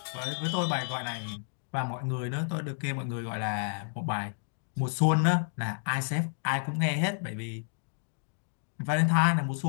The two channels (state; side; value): silent; right; digital silence